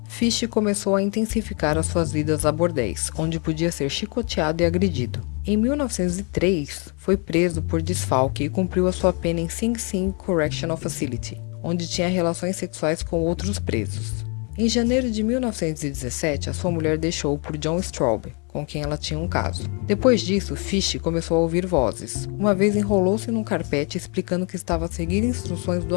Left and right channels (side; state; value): right; quieter; 34.3 dB